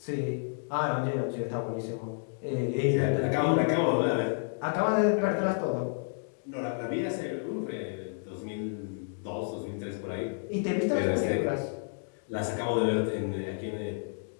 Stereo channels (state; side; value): silent; right; digital silence